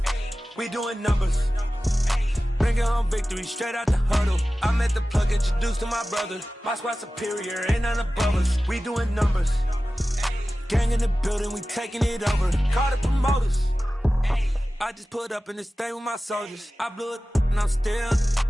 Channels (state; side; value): normal; both; correlation 0.96